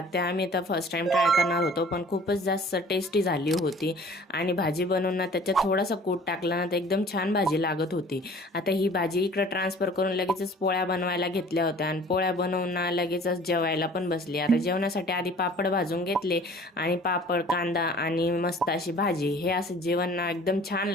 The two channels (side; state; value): both; normal; correlation 0.49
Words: आम्ही आता फर्स्ट टाइम ट्राय करणार होतो, पण खूपच जास्त टेस्टी झाली होती. आणि भाजी बनवून ना त्याच्यात थोडासा कूट टाकला ना तर एकदम छान भाजी लागत होती. आता ही भाजी इकडं ट्रान्सफर करून लगेचच पोळ्या बनवायला घेतल्या होत्या आणि पोळ्या बनवून ना लगेचच जेवायला पण बसली. आता जेवणासाठी आधी पापड भाजून घेतले आणि पापड, कांदा आणि मस्त अशी भाजी. हे असं जेवण ना एकदम छान